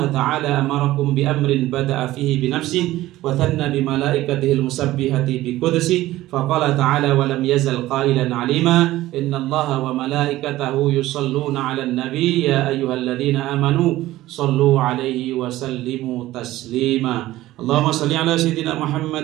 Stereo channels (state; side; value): quieter; left; 16.1 dB